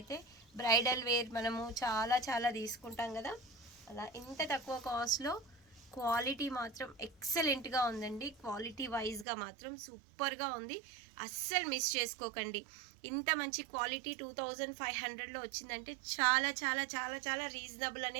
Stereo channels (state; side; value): drops out; left; at 9.2 s